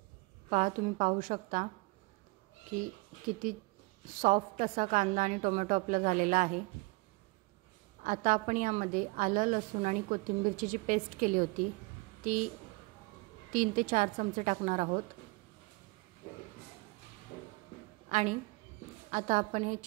तुम्ही पाहू शकता की किती सॉफ्ट असा कांदा आणि टोमॅटो आपला झालेला आहे। आता आपण यामध्ये आलं, लसूण आणि कोथिंबीरची जी पेस्ट केली होती ती 3 ते 4 चमचे टाकणार आहोत। आणि आता आपण हे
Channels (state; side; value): quieter; left; 27.1 dB